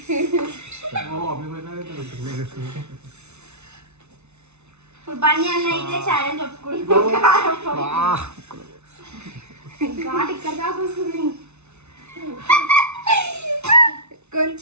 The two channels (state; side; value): late; left; 0.81 ms